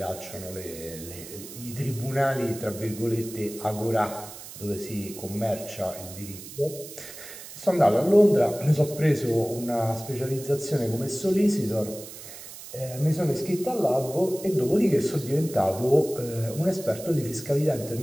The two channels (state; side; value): noise; right; hiss, 14 dB below the sound